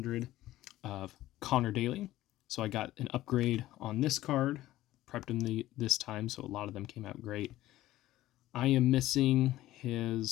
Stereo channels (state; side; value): quieter; right; 15.4 dB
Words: of Connor Daly. So I got an upgrade on this card, prepped him this time, so a lot of them came out great. I am missing